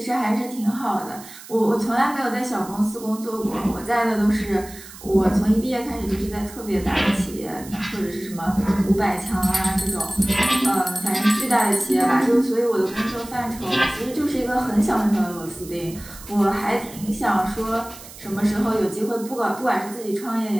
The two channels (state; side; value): noise; right; hiss, 17 dB below the sound